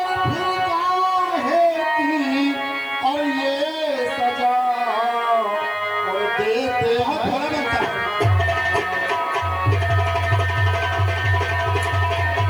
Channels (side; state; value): left; noise; hiss, 29 dB below the sound